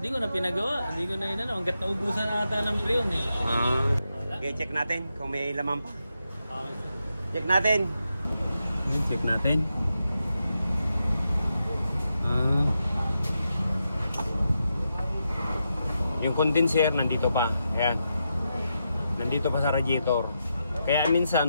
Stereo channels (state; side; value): inverted; both; correlation -0.86